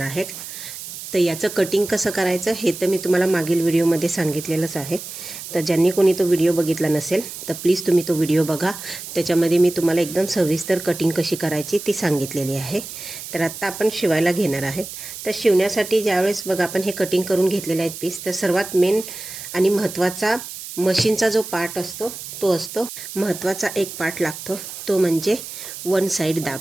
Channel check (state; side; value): noise; right; hiss, 11 dB below the sound